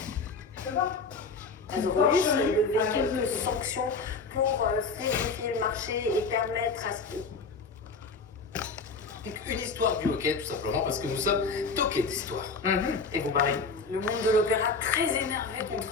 Azorus, le véhicule de fonction pour fluidifier le marché et permettre à ce que... Une histoire du hockey, tout simplement, parce que nous sommes toqués d'histoire. Et vous parlez. Le monde de l'opéra très énervé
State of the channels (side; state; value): right; quieter; 4.3 dB